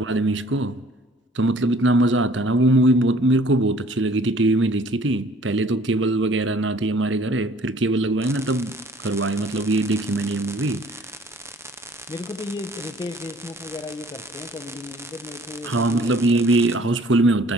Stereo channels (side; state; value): both; normal; correlation 0.55